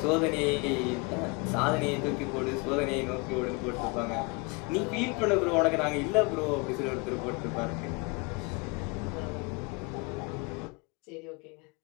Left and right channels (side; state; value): right; quieter; 29.1 dB